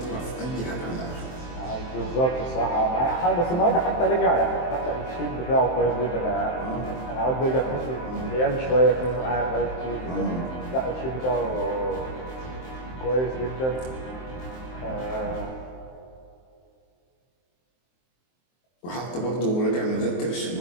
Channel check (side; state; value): right; late; 23 ms